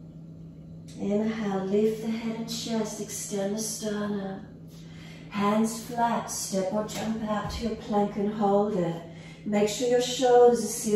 Inhale, lift the head and chest, extend the sternum. Hands flat, step or jump out to your plank and hold it. Make sure your shoulders are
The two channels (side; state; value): both; identical; correlation 1.00